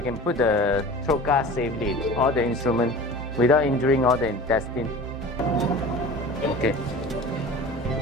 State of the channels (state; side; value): normal; both; correlation 0.38